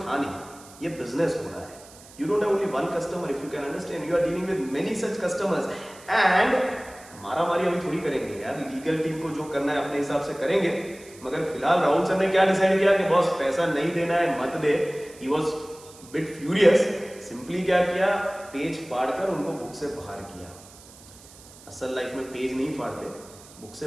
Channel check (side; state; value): right; noise; hiss, 21 dB below the sound